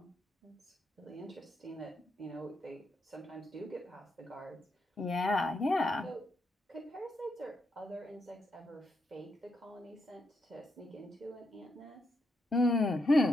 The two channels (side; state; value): both; normal; correlation 0.81